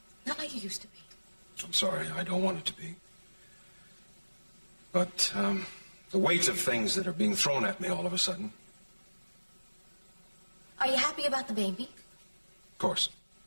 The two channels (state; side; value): inverted; both; correlation -1.00